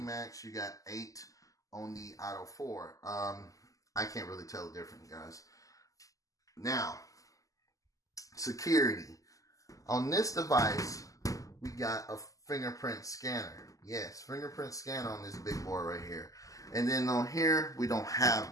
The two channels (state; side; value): late; right; 0.16 ms